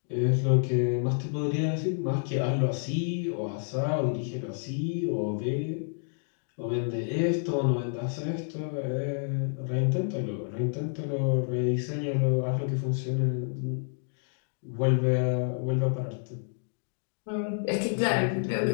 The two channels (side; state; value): right; silent; digital silence